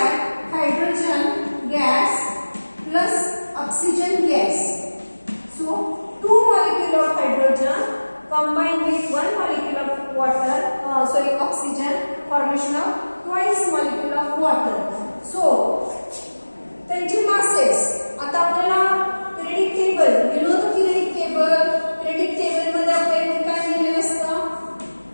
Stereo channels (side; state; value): both; inverted; correlation -1.00